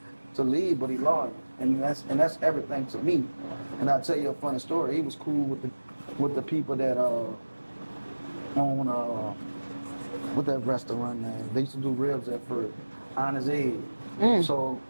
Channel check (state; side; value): inverted; both; correlation -1.00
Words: to leave, but he loyal. And that's everything to me. And I'll tell you a funny story. He was cool with the people that on what that restaurant name? They used to do ribs at first. Honest Aid. So